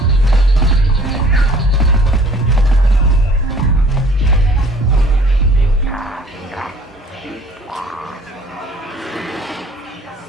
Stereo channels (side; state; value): both; normal; correlation 0.53